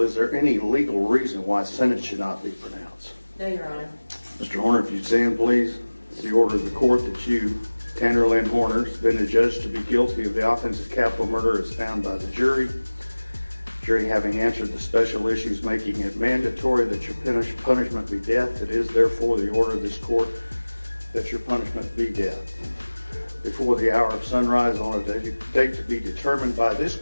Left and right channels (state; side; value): inverted; both; correlation -1.00